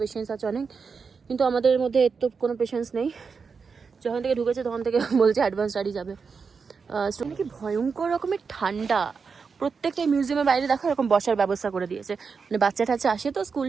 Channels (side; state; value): left; quieter; 5.3 dB